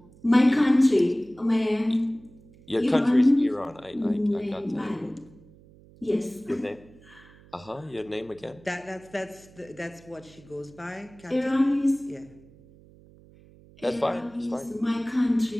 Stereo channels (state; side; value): noise; right; hum, 25 dB below the sound